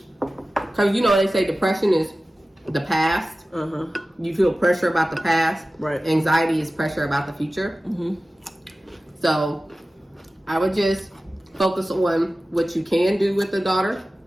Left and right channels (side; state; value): both; normal; correlation 0.96